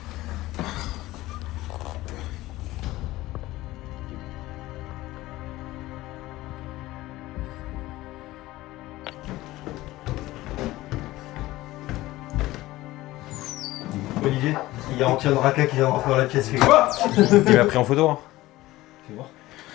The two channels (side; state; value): right; quieter; 17.6 dB